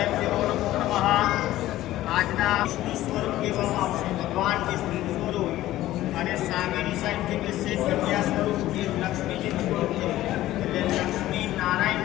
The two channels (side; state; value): right; quieter; 15.0 dB